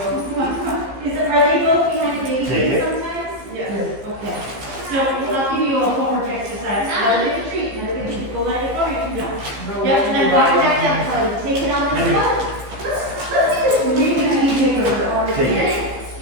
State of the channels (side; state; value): left; late; 15 ms